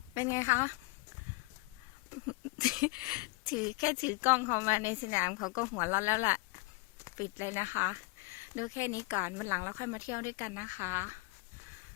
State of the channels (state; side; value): quieter; right; 26.1 dB